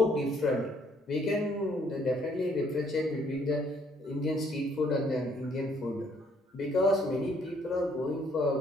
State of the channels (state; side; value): normal; both; correlation 0.66